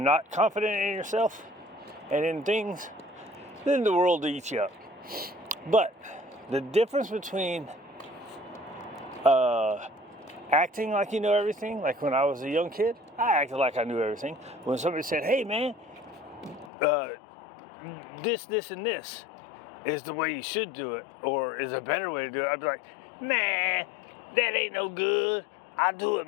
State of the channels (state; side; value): drops out; right; at 16.7 s